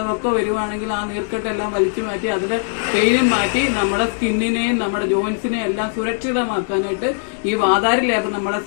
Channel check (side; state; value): right; silent; digital silence